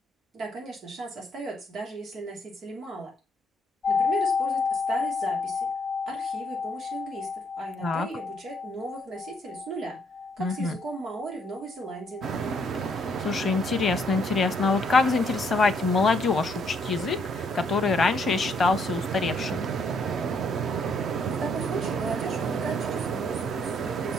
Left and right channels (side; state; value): both; normal; correlation 0.70